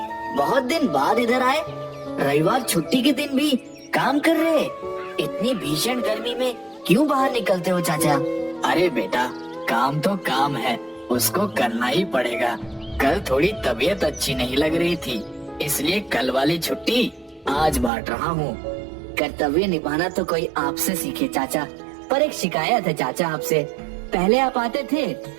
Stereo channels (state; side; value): drops out; left; at 17.9 s